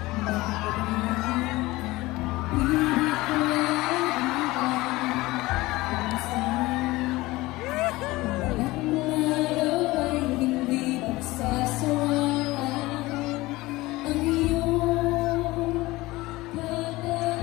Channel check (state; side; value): quieter; right; 19.8 dB